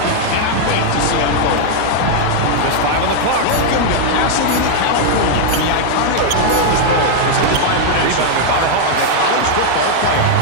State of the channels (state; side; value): different; both; correlation 0.00